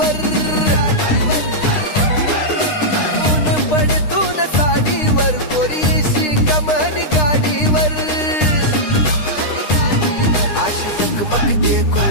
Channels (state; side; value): late; right; 9.8 ms